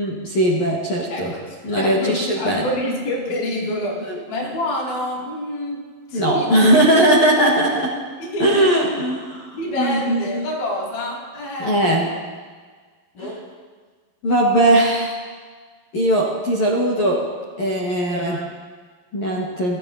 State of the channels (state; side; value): late; right; 11 ms